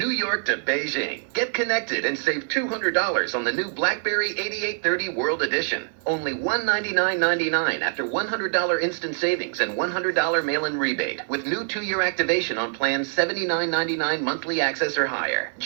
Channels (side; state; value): left; silent; digital silence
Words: York to Beijing, get connected and save $200 on the new BlackBerry 8830 World Edition. Only $199.99 after $100 instant savings and $100 mail-in rebate with new 2-year activation on plans $79.99 monthly access or higher.